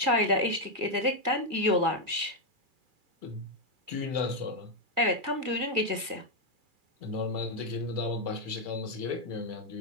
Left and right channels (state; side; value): late; left; 1.7 ms